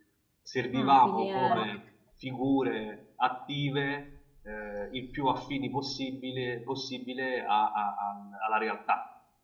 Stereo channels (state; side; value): identical; both; correlation 1.00